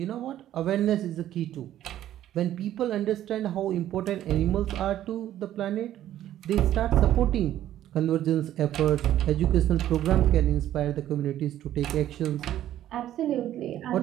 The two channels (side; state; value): left; quieter; 12.3 dB